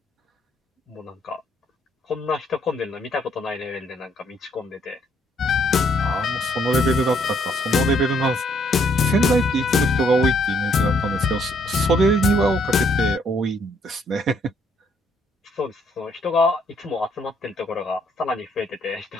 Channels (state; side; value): normal; both; correlation 0.68